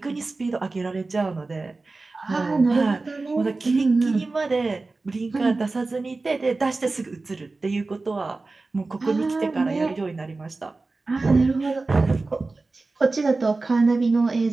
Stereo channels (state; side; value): quieter; left; 3.5 dB